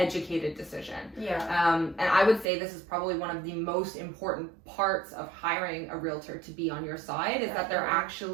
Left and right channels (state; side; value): drops out; left; at 2.5 s